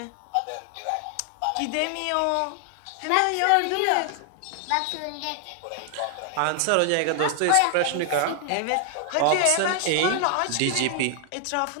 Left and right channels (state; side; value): different; both; correlation 0.00